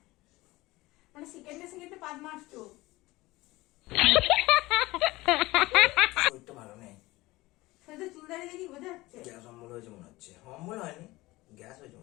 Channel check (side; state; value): right; quieter; 19.8 dB